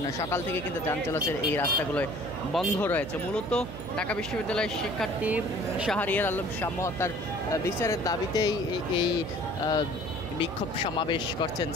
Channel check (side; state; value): right; noise; hum, 9 dB below the sound